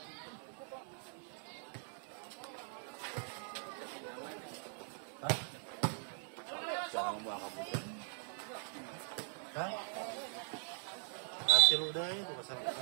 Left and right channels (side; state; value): left; silent; 50 dB below the other